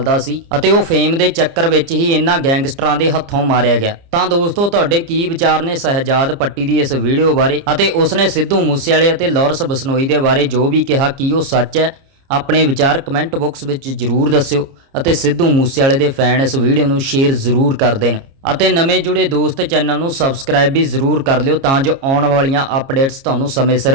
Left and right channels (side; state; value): left; late; 30 ms